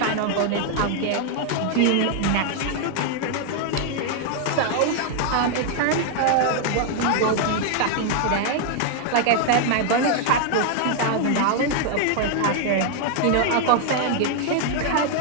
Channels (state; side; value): different; both; correlation 0.00